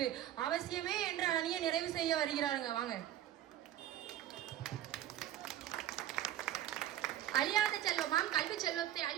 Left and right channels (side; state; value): left; quieter; 12.0 dB